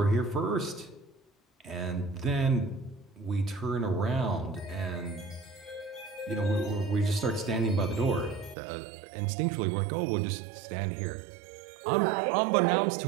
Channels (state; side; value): drops out; left; at 8.6 s